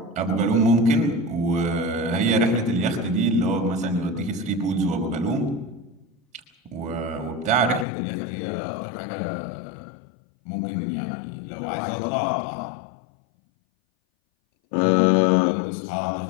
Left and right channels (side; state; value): right; drops out; at 7.9 s